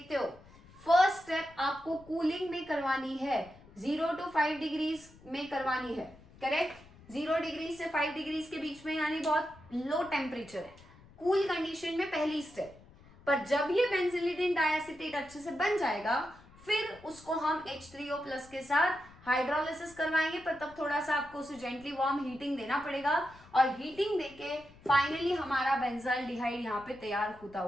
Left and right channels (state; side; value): noise; left; rumble, 23 dB below the sound